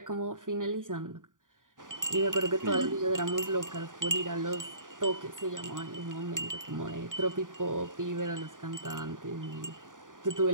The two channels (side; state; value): left; late; 0.88 ms